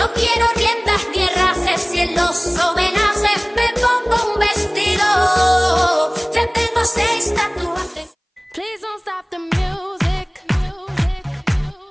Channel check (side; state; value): both; identical; correlation 1.00